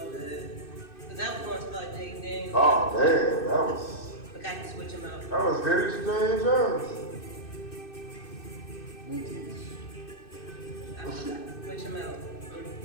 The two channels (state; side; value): late; right; 2.6 ms